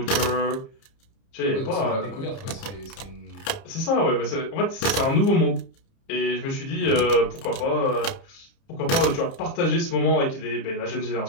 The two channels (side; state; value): right; late; 30 ms